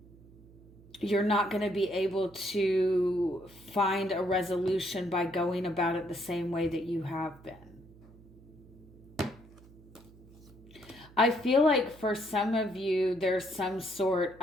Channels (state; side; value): noise; right; hum, 23 dB below the sound